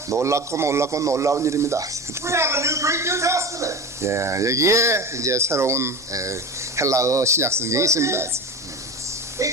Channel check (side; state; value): both; normal; correlation 0.28